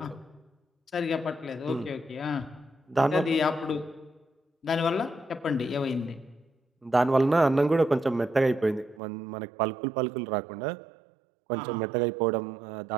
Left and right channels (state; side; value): drops out; left; at 9.0 s